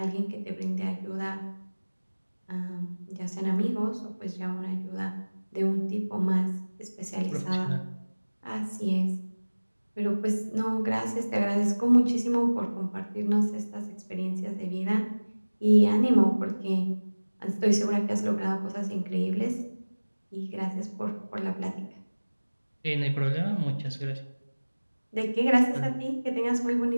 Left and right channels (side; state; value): both; inverted; correlation -1.00